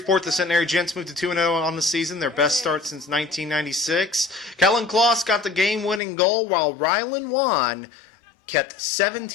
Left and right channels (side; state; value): right; drops out; at 6.0 s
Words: the Centenary Gents moved to 2-0 on the season, their best start since 1996. Kellen Kloss got the game-winning goal, while Rylan Wan kept